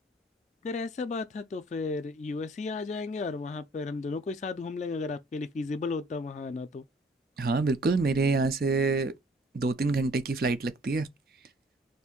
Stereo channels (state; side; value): normal; both; correlation 0.57